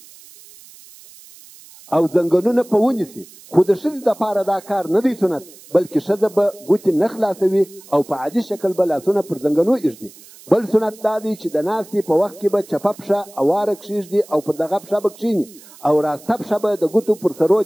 او زنګنونه په ونیسي، خو د ښځې دپاره دا کار نه دی سنت، بلکې ښځه به ګوتې نه خلاصوي او په عادي شکل به لاسونه پر زنګنو ایږدي. بل سنت دا دی چې د ناستې په وخت کې به چپه پښه اواره کښېږدي او پر دغه پښه به کښېني او راسته پښه به د ګوتو پر سرو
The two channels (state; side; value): noise; right; hiss, 22 dB below the sound